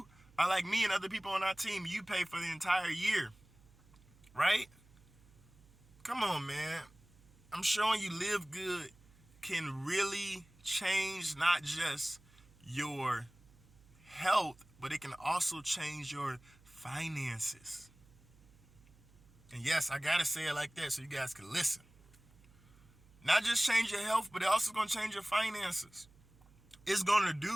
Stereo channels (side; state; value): right; noise; hum, 27 dB below the sound